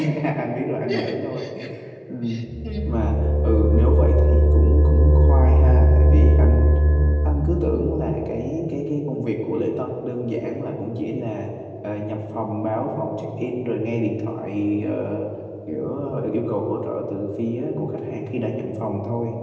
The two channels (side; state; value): both; identical; correlation 1.00